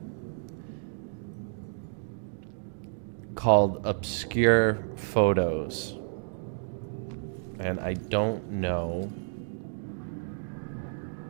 called obscure photos, and I don't know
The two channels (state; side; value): silent; left; digital silence